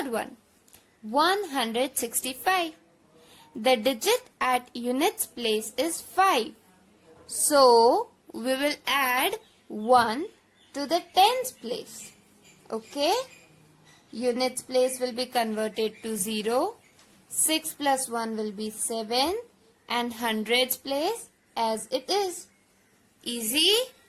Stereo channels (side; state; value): both; identical; correlation 1.00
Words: one. 165. The digit at units place is 5. So we will add 1 to the tens place. Okay? Units place will be converted to 0. 6 plus 1 will be 7, and hundreds place as it is. Easy?